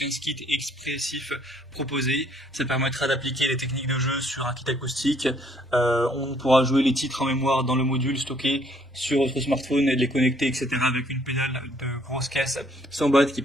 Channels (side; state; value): both; normal; correlation 0.64